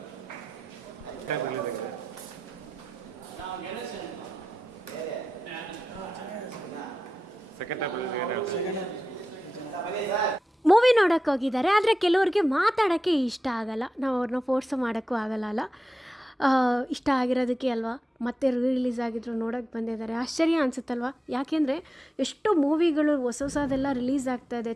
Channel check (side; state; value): both; normal; correlation 0.91